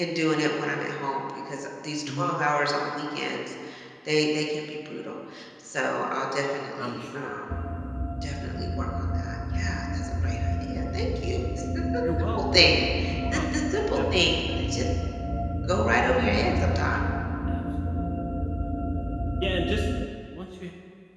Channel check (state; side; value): identical; both; correlation 1.00